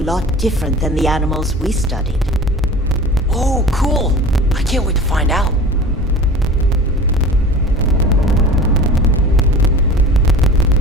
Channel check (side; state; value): both; normal; correlation 0.39